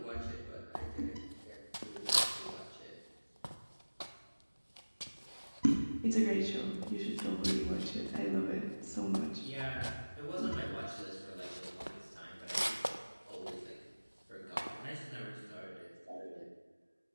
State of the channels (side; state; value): both; inverted; correlation -1.00